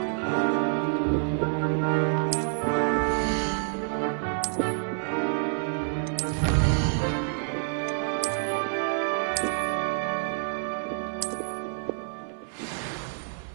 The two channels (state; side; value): silent; left; digital silence